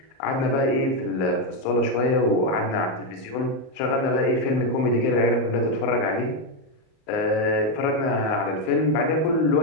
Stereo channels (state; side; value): late; right; 38 ms